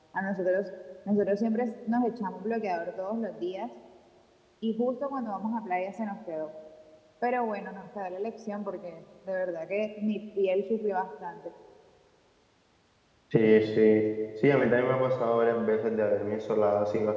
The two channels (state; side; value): identical; both; correlation 1.00